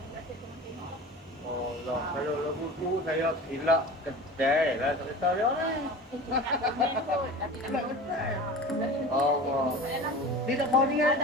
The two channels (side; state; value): both; normal; correlation 0.35